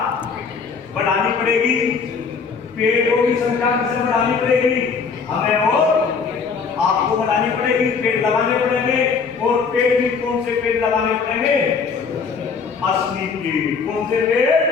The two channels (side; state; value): right; quieter; 5.4 dB